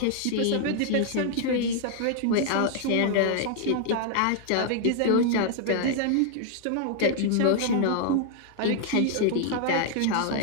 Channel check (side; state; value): both; different; correlation 0.00